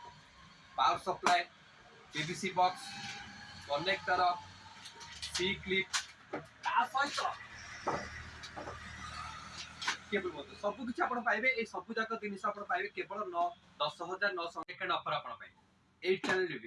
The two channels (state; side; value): identical; both; correlation 1.00